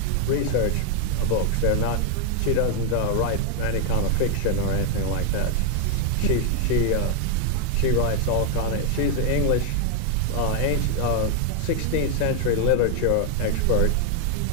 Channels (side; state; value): both; different; correlation 0.00